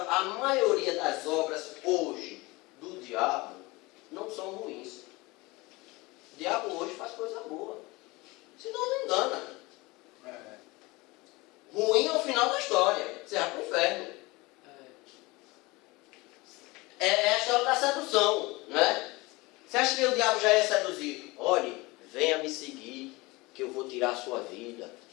maioria das obras hoje do diabo não são ruins. O diabo hoje faz coisa boa. Senão não engana. Ruim é o final da história. Você vai para o inferno. É a história da sedução, né? Você acha que o diabo já ia seduzir? Olhe, venha me seguir, que eu vou tirar a sua vida.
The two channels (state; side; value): quieter; right; 23.0 dB